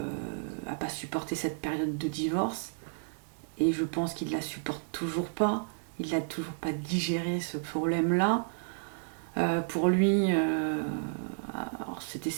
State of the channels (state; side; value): silent; left; digital silence